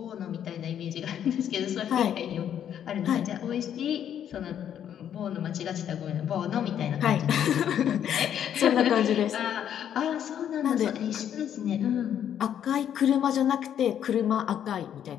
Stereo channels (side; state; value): right; quieter; 9.6 dB